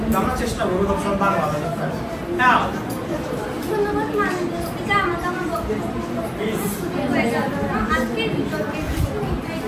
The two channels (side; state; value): both; identical; correlation 1.00